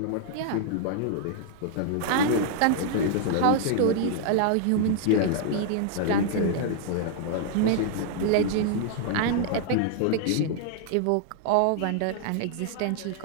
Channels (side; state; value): both; different; correlation 0.00